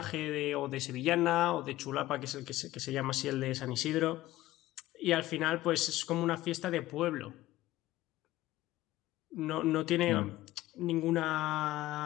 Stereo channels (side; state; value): right; quieter; 16.3 dB